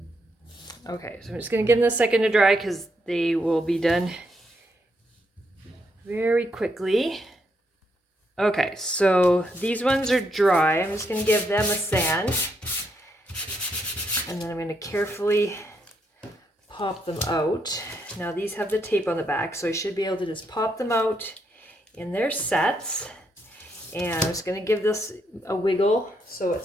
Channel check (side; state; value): both; normal; correlation 0.77